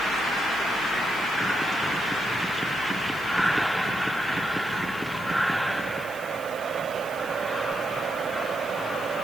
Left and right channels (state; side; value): noise; right; hiss, 19 dB below the sound